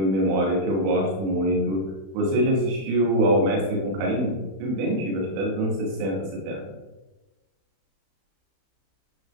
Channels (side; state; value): left; late; 31 ms